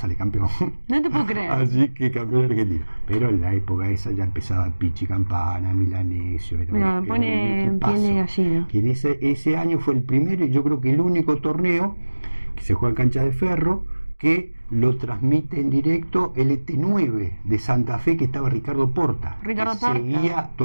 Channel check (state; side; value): inverted; both; correlation -1.00